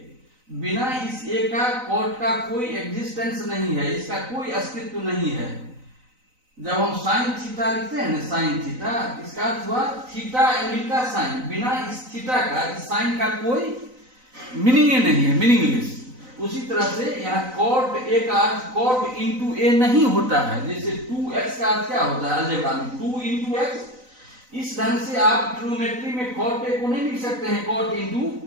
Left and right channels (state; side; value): late; left; 3.9 ms